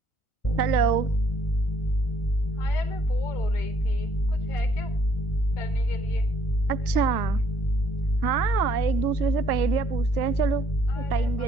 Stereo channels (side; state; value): right; late; 1.3 ms